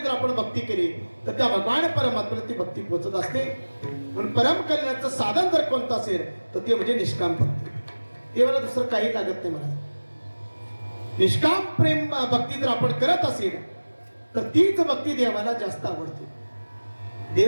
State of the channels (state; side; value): inverted; both; correlation -1.00